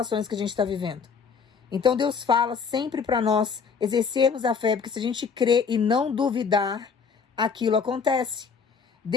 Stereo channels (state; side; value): quieter; right; 5.8 dB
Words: que a gente está vivendo. Então Deus fala sempre para nós exercermos a fé, porque se a gente crer e não duvidar, aquilo acontece.